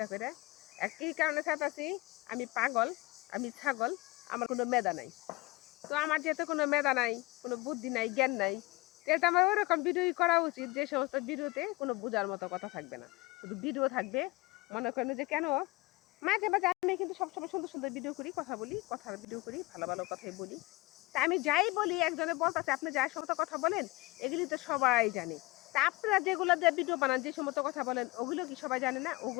করে। আর কি কারণে ছাড়তাছি? আমি পাগল, আমি ছাগল, আমার কোনো মেধা নাই। তো আমার যেহেতু কোনো মেধা নাই, কোনো বুদ্ধি নাই, জ্ঞান নাই, তাহলে তো আমার ওরকম ভিডিওই করা উচিত যে সমস্ত ভিডিওতে কোনো বোঝার মতো কথা থাকবে না, শুধু ভিডিও থাকবে। মনে করেন যে কেন মাঝে মাঝে আমি কিন্তু সবসময় সুন্দর সুন্দর ভিডিও করি, কথা বলি, কথার ভিডিও করি, ভালো ভালো কথাই বলি। তা আমি যাই বলি একজনে বলতেছে আপনি যাই সমস্ত কথা বলেন এগুলি তো সবাই জানে। তা আপনারা যেগুলো দিয়ে ভিডিও বানান যে সমস্ত কথা বলেন ওগুলো কি সবাই জানে না?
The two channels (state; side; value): quieter; right; 22.6 dB